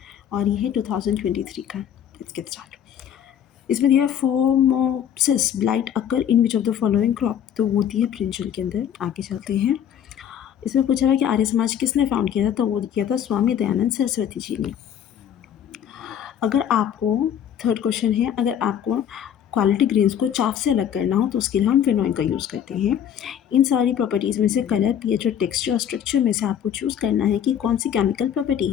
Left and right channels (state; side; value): quieter; right; 9.4 dB